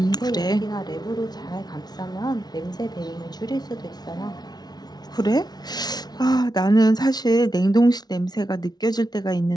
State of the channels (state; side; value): late; right; 0.19 ms